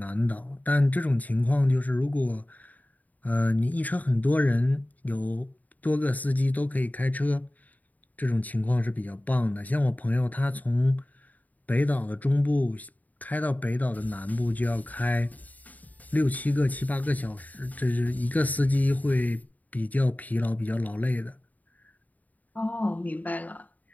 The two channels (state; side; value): late; right; 0.077 ms